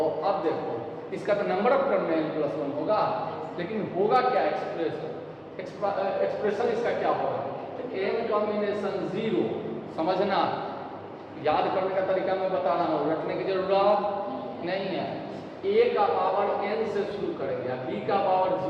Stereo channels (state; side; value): identical; both; correlation 1.00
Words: अब देखो इसका तो नंबर ऑफ टर्म में n+1 होगा, लेकिन होगा क्या एक्सप्रेशन इसका क्या होगा, n कॉम्बिनेशन 0। समझना, याद करने का तरीका मैं बता रहा हूँ, रखने की जरूरत नहीं है। a का पावर n से शुरू करेंगे, b का पावर